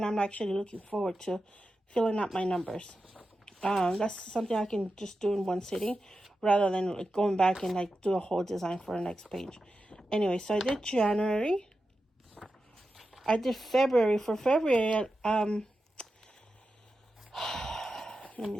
I'm actually looking forward to filling out my numbers. That's something I can just do in one sitting, rather than going back and do a whole design for the next page. Anyway, so I did January. I did February. For February, let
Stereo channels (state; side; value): normal; both; correlation 0.90